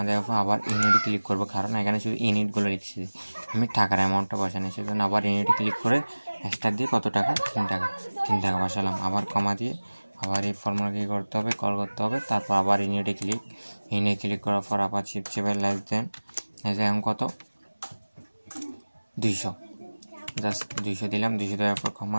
দেওয়ার পর আবার ইউনিটে ক্লিক করবো, কারণ এখানে শুধু ইউনিটগুলো লিখছি, আমি টাকার অ্যামাউন্টটা বসানি। সেজন্য আবার ইউনিটে ক্লিক করে স্টার দিয়ে কত টাকা, 3 টাকা বসালাম। আবার কমা দিয়ে আবার এই ফর্মুলা কী করতে হবে, কল করতে হবে। তারপর আবার ইউনিটে ক্লিক করার পর আবার শিফট চেপে লেস দেন এখন কত, 200, জাস্ট 200 দিলাম। 200 দেওয়ার পর কমা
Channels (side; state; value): both; inverted; correlation -1.00